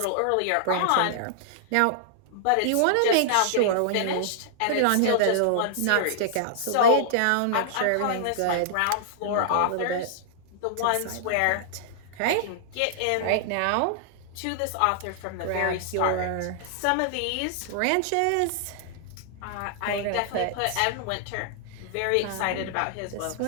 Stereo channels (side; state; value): both; different; correlation -0.01